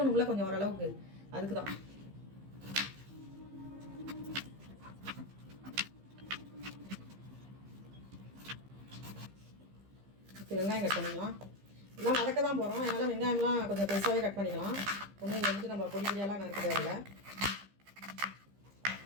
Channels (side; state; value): left; late; 15 ms